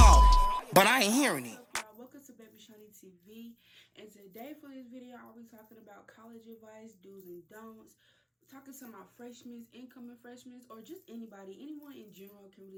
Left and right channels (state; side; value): identical; both; correlation 1.00